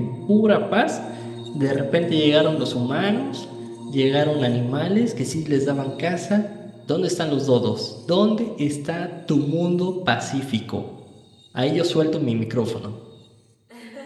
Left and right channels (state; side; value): identical; both; correlation 1.00